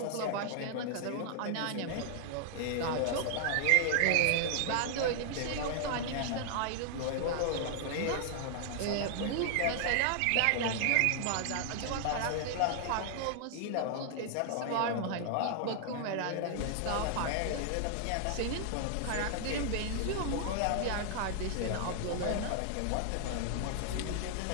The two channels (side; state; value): both; different; correlation -0.01